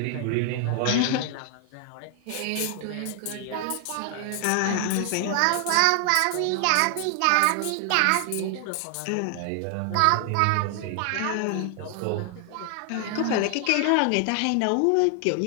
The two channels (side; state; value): both; different; correlation 0.00